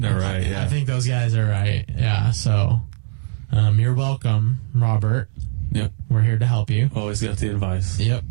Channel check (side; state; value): left; silent; digital silence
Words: right, yeah. I think those guys are right. Yeah, so you're welcome, Robert. Yep. We're here to help you. Always got the advice. Yep.